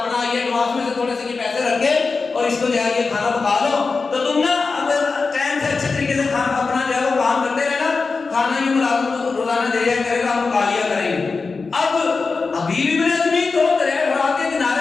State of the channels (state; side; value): quieter; right; 4.3 dB